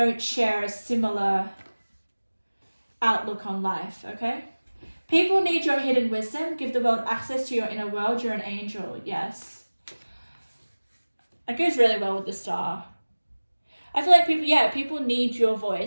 share a similar outlook on life, okay? People need your hidden wisdom. Give the world access to your inner world. You're an angel, yes. That goes really well with the star. I feel like people need your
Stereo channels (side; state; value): both; inverted; correlation -1.00